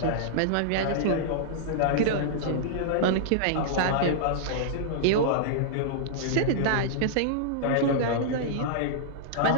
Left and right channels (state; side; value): different; both; correlation -0.02